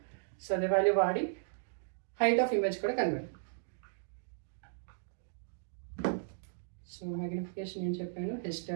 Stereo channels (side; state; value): left; silent; digital silence